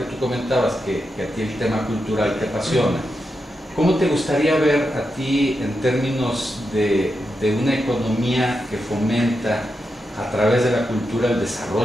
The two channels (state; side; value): normal; both; correlation 0.86